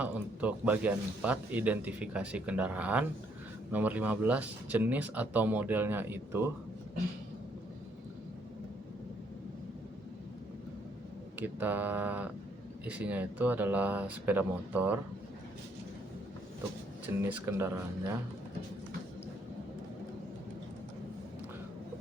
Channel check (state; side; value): normal; both; correlation 0.69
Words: untuk bagian 4, identifikasi kendaraan. Nomor 15, jenis atau modelnya itu Kita isinya itu adalah sepeda motor untuk jenis kendaraannya.